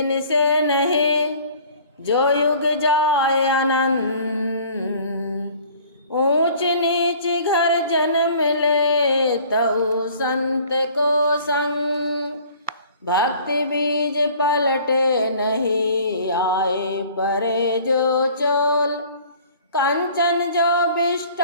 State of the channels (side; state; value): both; inverted; correlation -0.50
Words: से नहीं जो युग जाए आनंद, ऊंच नीच घर जन्म ले तऊ संत को संग, भक्ति बीज पलटे नहीं आए परे जो चोल, कंचन जो